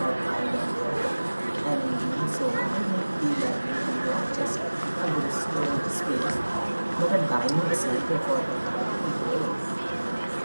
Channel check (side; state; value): both; inverted; correlation -1.00